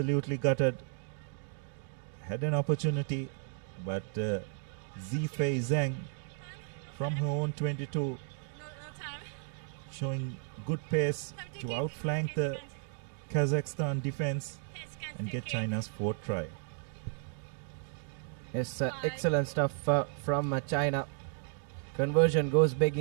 gutted. Had an opportunity, but Zifei Zhang from her own 22 showing good pace to outflank the Kazakhstan defense and get China's 4th try. Yes, excellent stuff from China. conversion goes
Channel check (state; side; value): silent; left; 55 dB below the other